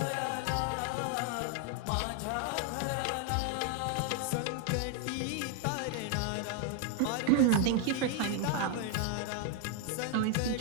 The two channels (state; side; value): different; both; correlation 0.00